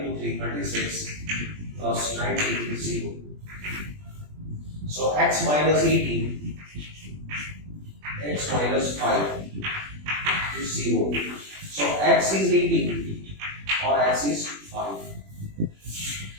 into 3, 36, plus 90 is 0. So x minus 18, x minus 5 is 0. So x is 18 or x is 5.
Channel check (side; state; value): left; late; 20 ms